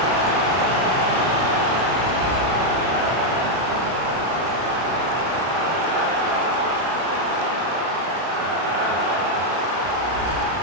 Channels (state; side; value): late; left; 32 ms